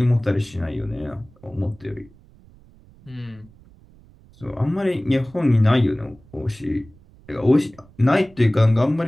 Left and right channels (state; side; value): noise; right; rumble, 26 dB below the sound